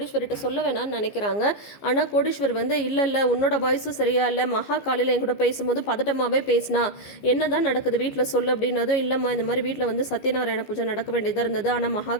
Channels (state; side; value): late; right; 15 ms